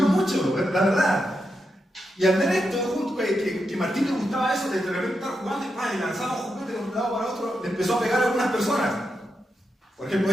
mucho, la verdad. Y al ver esto, junto que Martín le gustaba eso, de repente estar jugando y lanzaba un juguete de un lado para otro, le empezó a pegar a algunas personas. Por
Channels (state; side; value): normal; both; correlation 0.85